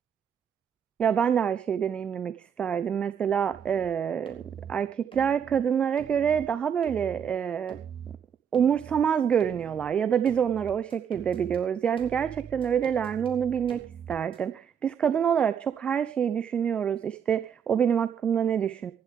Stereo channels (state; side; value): quieter; left; 7.8 dB